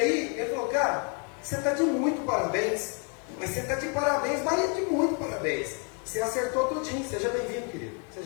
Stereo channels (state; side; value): quieter; right; 38.4 dB